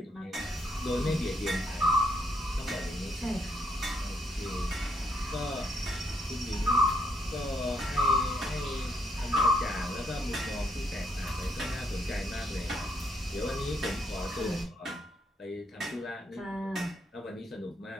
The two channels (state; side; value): normal; both; correlation 0.74